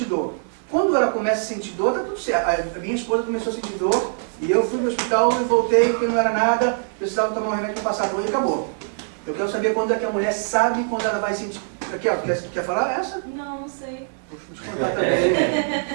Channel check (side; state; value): left; silent; digital silence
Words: dor. Quando ela começa a sentir dor, tá tudo certo. A minha esposa começou a sentir dor e eu fui no hospital e voltei porque não era nada, precisava tomar um remédio para passar dor e acabou. Eu quero saber quando é que a mulher sabe quando ela vai sentir... Aqui, ó, quer falar essa? Não, não sei. Vou te contar também.